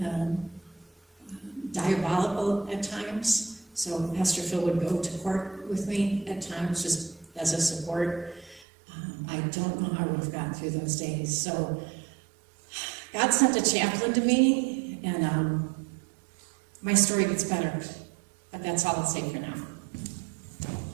diabolical at times. So Pastor Phil would go to court with me at times, just as a support. I don't know how I would have gotten through those days. So God sent a chaplain to me, and my story gets better. But that's all I'll say for now.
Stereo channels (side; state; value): left; drops out; at 8.7 s